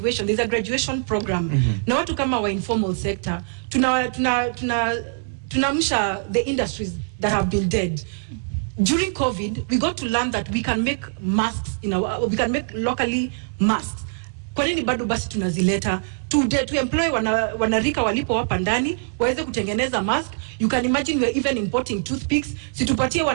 There's a graduation program. Na watu kama wa informal sector tunamsha the industries that have been dead. During COVID, we got to learn that we can make masks we can make locally masks. Kwa nini bado basi tunazileta to employ wanarika walipo hapa ndani waweze kutengeneza mask? You can imagine we're even importing toothpicks. Situpatie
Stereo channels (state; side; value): silent; left; 63 dB below the other